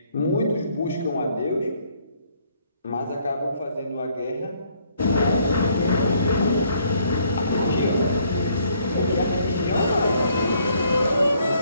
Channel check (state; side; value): inverted; both; correlation -0.66